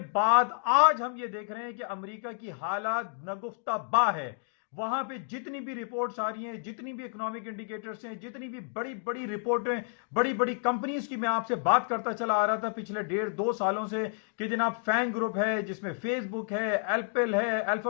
بعد آج ہم یہ دیکھ رہے ہیں کہ امریکہ کی حالات نگفتہ با ہے۔ وہاں پہ جتنی بھی رپورٹس آ رہی ہیں، جتنی بھی اکنامک انڈیکیٹرز ہیں، جتنی بھی بڑی بڑی رپورٹیں، بڑی بڑی کمپنیز کی میں آپ سے بات کرتا چلا آ رہا تھا پچھلے 1.5-2 سالوں سے، کہ جناب فینگ گروپ ہے، جس میں فیس بک ہے، ایپل ہے،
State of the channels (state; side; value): silent; right; 58 dB below the other